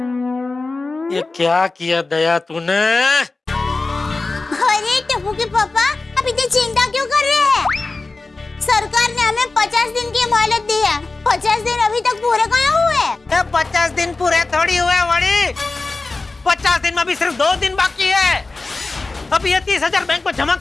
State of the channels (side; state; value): right; quieter; 3.5 dB